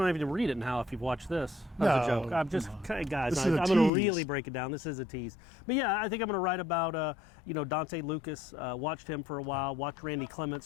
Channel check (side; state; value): right; drops out; at 3.9 s